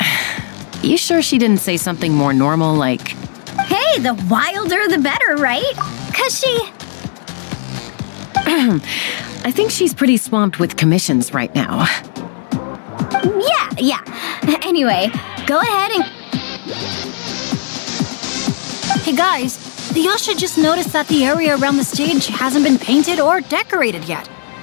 You sure she didn't say something more normal like, Hey, the wilder the better, right? 'Cause she... I think she's pretty swamped with commissions right now. Yeah. Anyway, go ahead and... Hey guys, the Yasha just noticed that the area around the stage hasn't been painted or decorated yet.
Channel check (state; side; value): silent; right; digital silence